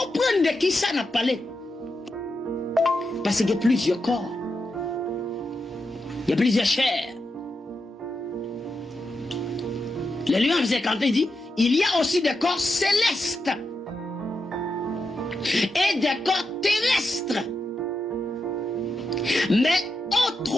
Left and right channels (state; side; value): normal; both; correlation 0.86